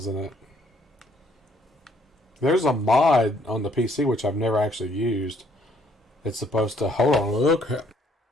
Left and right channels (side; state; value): both; normal; correlation 0.66